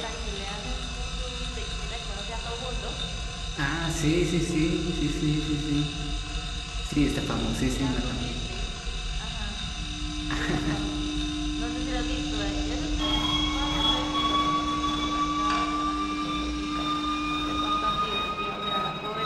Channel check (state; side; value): identical; both; correlation 1.00